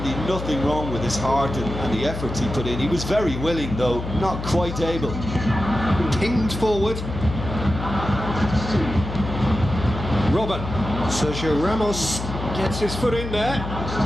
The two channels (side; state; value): left; noise; hum, 7 dB below the sound